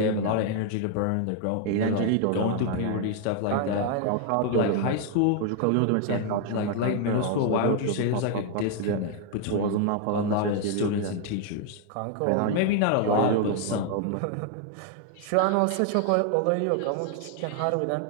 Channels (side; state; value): both; different; correlation 0.00